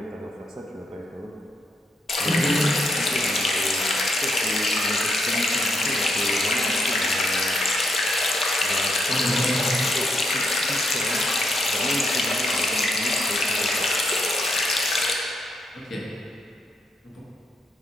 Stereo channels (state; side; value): normal; both; correlation 0.78